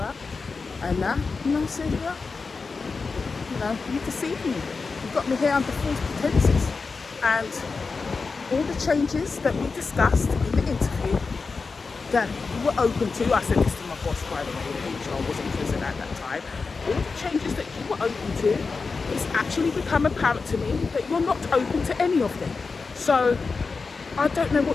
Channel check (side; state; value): right; quieter; 4.5 dB